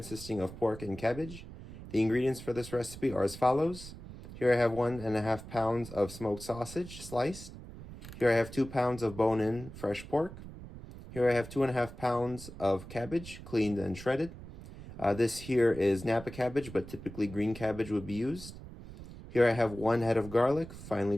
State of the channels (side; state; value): right; noise; rumble, 14 dB below the sound